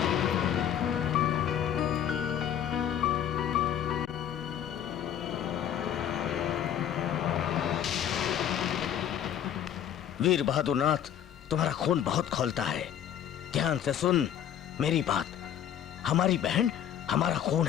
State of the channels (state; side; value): quieter; right; 9.9 dB